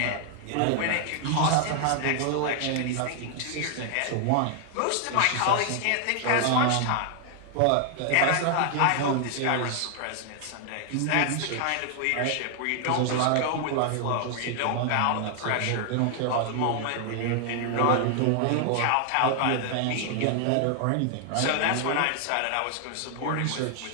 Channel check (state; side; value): different; both; correlation 0.00